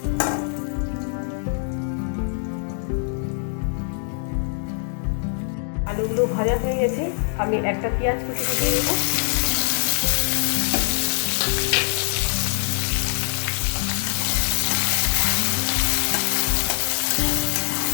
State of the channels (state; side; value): silent; right; 63 dB below the other